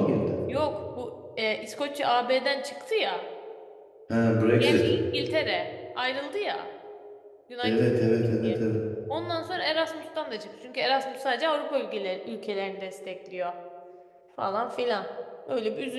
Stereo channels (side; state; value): both; identical; correlation 1.00